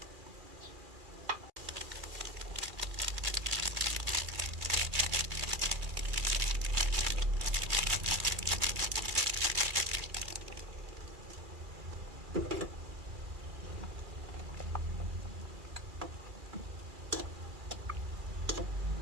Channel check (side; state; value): left; late; 2.4 ms